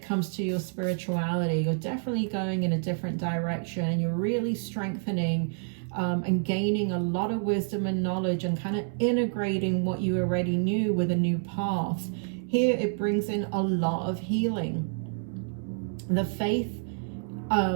comes to your spirituality. You're definitely going in a different direction, and you're really strengthening and gaining a lot of wisdom and knowledge and kind of integrating what you already knew with a new path. Here it brings in a lot of healing. The faith,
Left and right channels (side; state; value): left; silent; 59 dB below the other